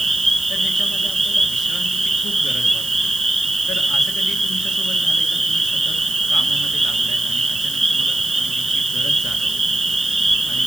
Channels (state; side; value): noise; right; hiss, 11 dB below the sound